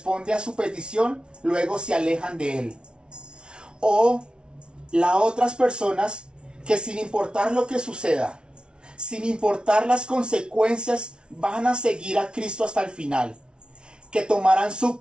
a su petición, luego se alejan de Él. O las otras personas que sin importar lo que suceda, sin importar las consecuencias, van a seguir a Cristo hasta el final. Que tomarán su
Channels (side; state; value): left; late; 0.056 ms